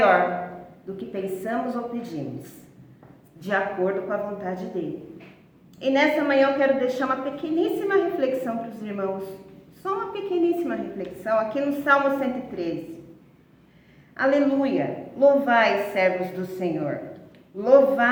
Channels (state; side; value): identical; both; correlation 1.00